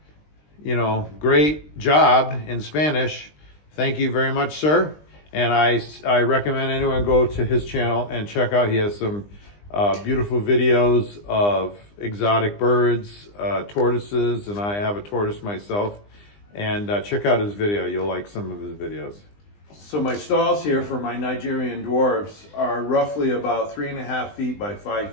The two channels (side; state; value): right; late; 20 ms